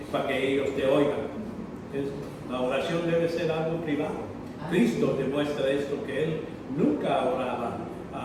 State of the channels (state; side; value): identical; both; correlation 1.00